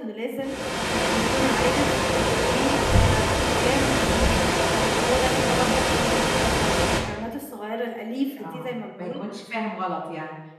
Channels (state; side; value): identical; both; correlation 1.00